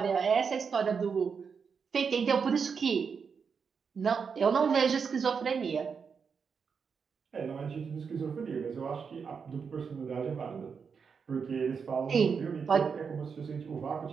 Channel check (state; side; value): quieter; left; 6.0 dB